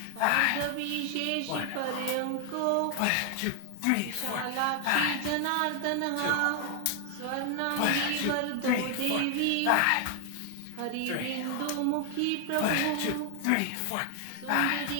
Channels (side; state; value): both; different; correlation 0.00